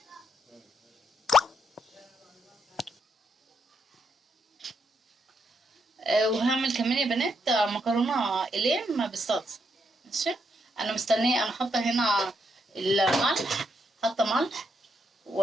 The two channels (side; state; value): both; normal; correlation 0.78